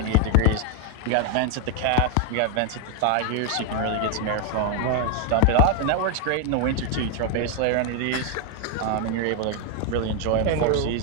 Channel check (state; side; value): different; both; correlation 0.01